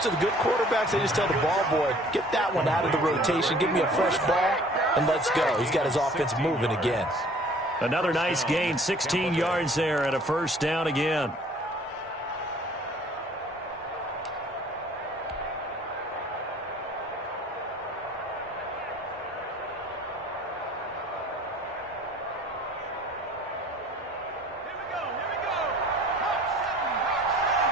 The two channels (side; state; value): both; normal; correlation 0.52